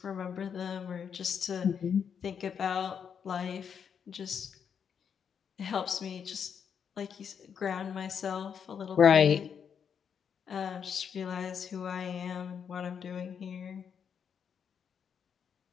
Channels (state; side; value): quieter; right; 7.3 dB